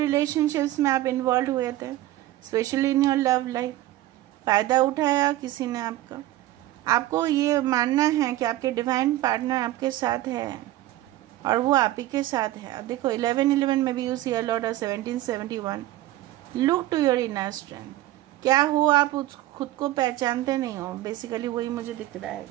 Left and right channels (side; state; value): left; quieter; 15.4 dB